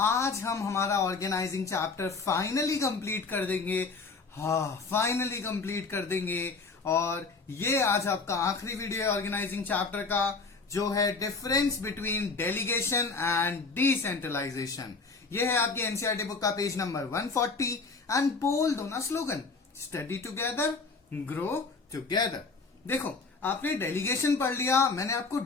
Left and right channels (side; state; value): right; quieter; 4.3 dB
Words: आज हम हमारा ऑर्गेनाइजिंग चैप्टर फाइनली कंप्लीट कर देंगे. फाइनली कंप्लीट कर देंगे. और ये आज आपका आखिरी वीडियो है ऑर्गेनाइजिंग चैप्टर का, जो है difference between delegation and decentralisation. ये है आपकी एनसीईआरटी बुक का पेज नंबर 140. एंड बोल दो ना slogan, study together grow together. देखो, आपने डेलीगेशन पढ़ लिया, मैंने आपको